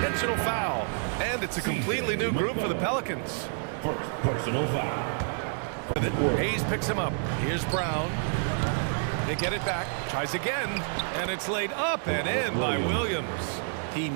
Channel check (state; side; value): silent; left; 58 dB below the other